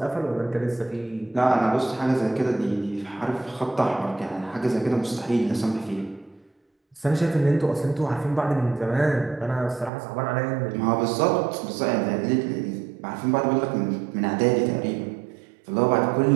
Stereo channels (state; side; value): drops out; left; at 9.9 s